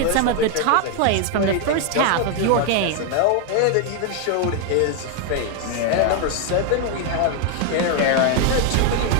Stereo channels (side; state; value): both; different; correlation 0.01